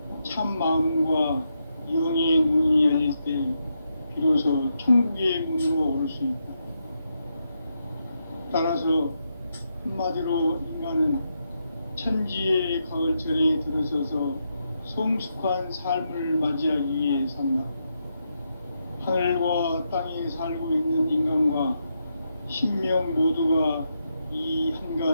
참 마음과 영의 눈이 열릴 때 비로소 천국의 문으로 올 수 있다. 따라서 한마디로 인간은 천지의 가을철에 들어서서 성숙한 삶을 맞이하기 위해 산다. 하늘과 땅에 살고 있는 인간과 신명 모두가 이 한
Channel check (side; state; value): both; inverted; correlation -0.83